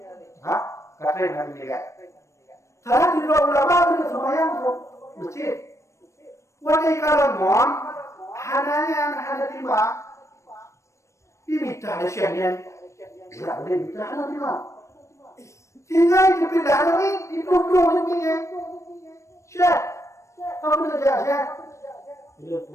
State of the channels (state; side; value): late; right; 0.14 ms